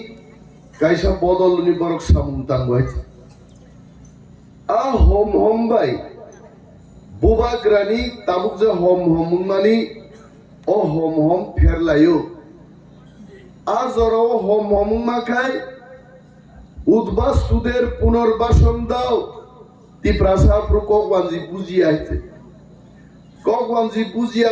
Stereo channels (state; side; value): identical; both; correlation 1.00